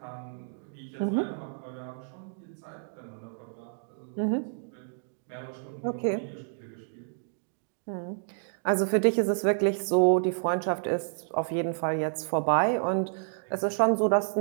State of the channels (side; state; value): left; silent; digital silence